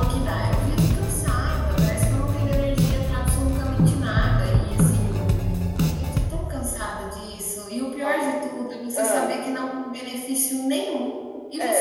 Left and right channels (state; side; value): identical; both; correlation 1.00